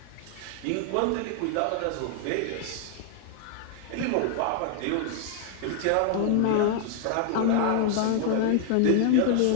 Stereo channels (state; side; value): different; both; correlation 0.00